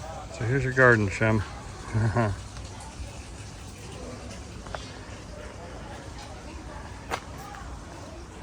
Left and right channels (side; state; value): both; identical; correlation 1.00